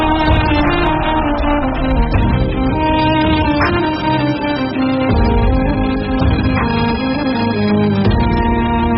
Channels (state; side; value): identical; both; correlation 1.00